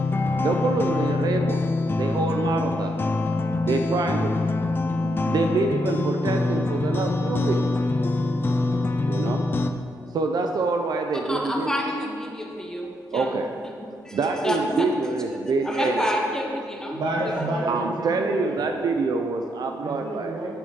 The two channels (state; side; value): normal; both; correlation 0.77